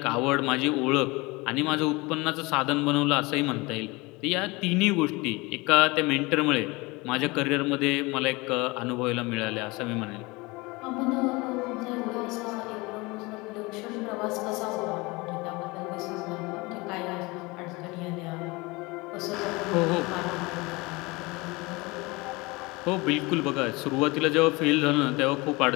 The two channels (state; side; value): quieter; right; 24.3 dB